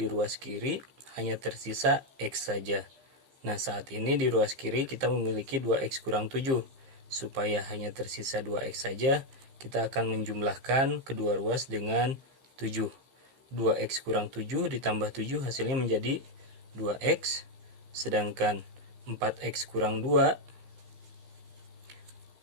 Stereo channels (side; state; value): left; late; 15 ms